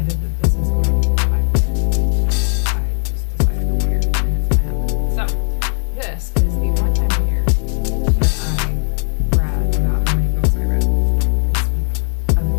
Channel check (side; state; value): right; silent; digital silence